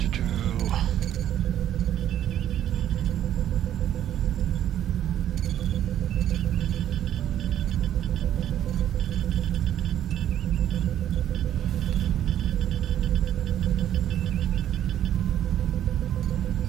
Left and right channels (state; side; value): quieter; left; 11.1 dB